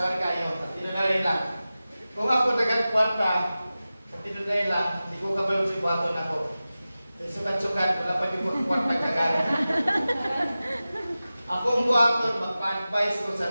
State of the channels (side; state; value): both; inverted; correlation -0.95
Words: kayo. Tinunay lang. Kung ako dagang kwarta, tinunay lang, hindi ko kabalo si buhaton ako. Sukat-sukat, wala pa yung mga kwarta kagana. Ako ang buhaton, magpa-advise ko